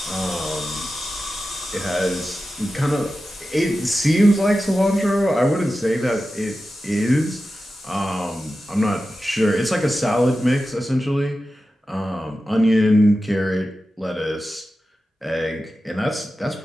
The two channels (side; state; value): both; normal; correlation 0.93